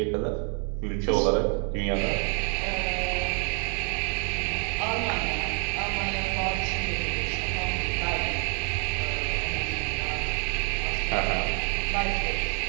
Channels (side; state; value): left; quieter; 38.7 dB